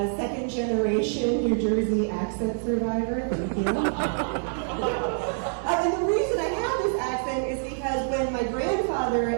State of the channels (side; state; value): left; silent; 61 dB below the other